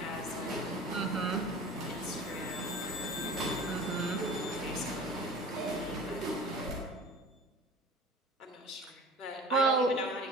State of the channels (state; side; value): normal; both; correlation 0.40